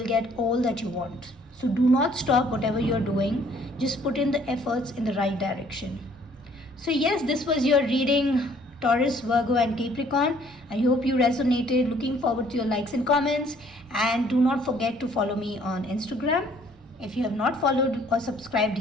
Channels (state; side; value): noise; right; rumble, 27 dB below the sound